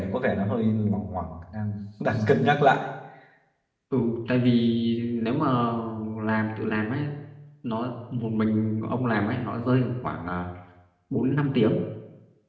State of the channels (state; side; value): identical; both; correlation 1.00